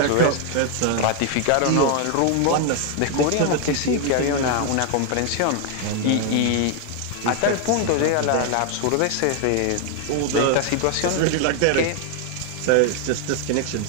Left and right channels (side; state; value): both; different; correlation 0.00